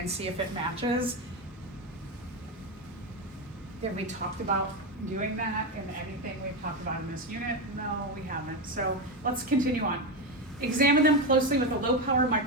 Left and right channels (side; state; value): both; normal; correlation 0.13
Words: see if it matches. Have we talked about doing that in anything we've talked about in this unit? No, we haven't. So let's continue on. Examine them closely with a low-power